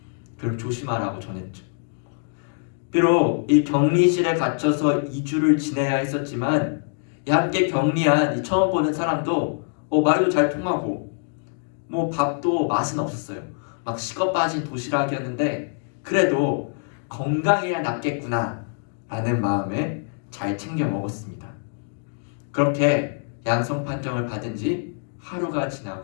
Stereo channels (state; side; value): silent; right; digital silence